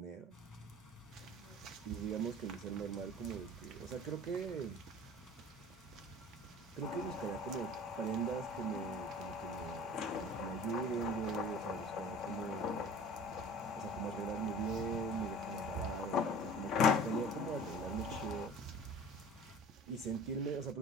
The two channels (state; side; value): normal; both; correlation 0.43